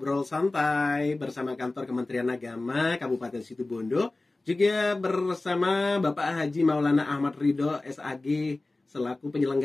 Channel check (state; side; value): quieter; right; 3.0 dB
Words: Santai bersama Kantor Kementerian Agama Kabupaten Situbondo, juga bersama Bapak Haji Maulana Ahmad Ridho SAG selaku